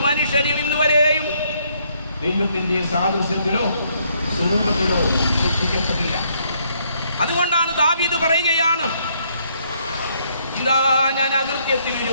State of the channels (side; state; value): both; inverted; correlation -0.70